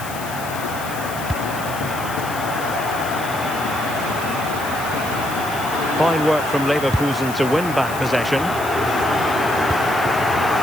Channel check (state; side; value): noise; left; hiss, 13 dB below the sound